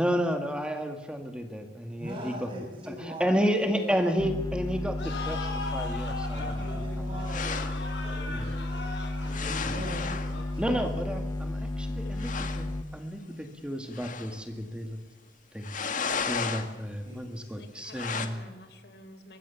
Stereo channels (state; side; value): normal; both; correlation 0.71